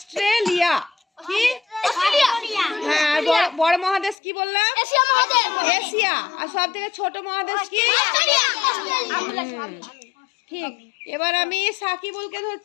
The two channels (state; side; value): drops out; right; at 4.2 s